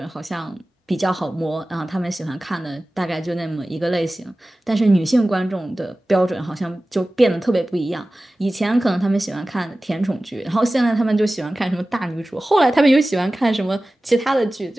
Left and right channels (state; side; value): normal; both; correlation 0.97